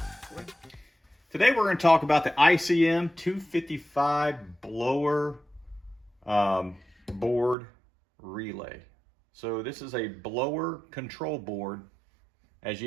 Today we're going to talk about the ICM 255 blower board relay. So this is a blower control board. As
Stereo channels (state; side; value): drops out; left; at 7.6 s